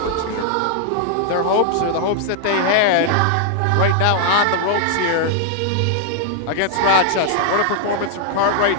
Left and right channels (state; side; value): different; both; correlation 0.00